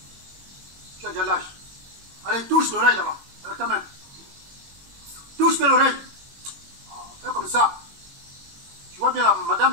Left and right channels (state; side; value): late; left; 21 ms